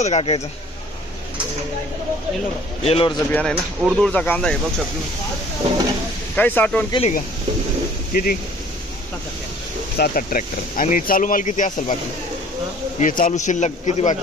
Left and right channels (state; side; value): normal; both; correlation 0.52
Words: काकायचं? येलोरचं बियाणं आहे ना. उर्दूळचा कांदा आहे बघ सर तुम्ही. काही साठवण केली का? किती? 7-8 ट्रॅक्टर. आणि चालू माल किती असेल बाकी? हे चालू शिल्लक किती